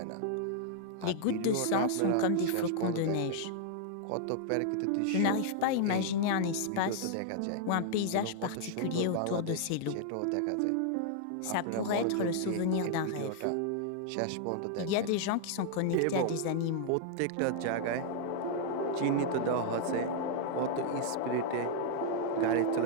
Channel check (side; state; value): both; different; correlation -0.01